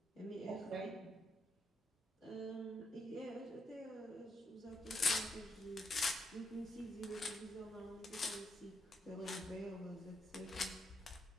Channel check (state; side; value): normal; both; correlation 0.77